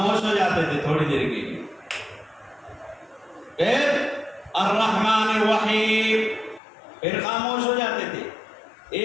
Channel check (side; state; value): right; drops out; at 6.6 s